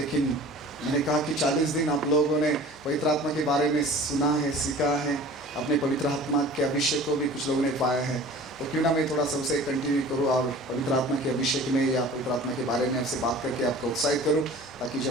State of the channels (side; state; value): left; noise; hum, 27 dB below the sound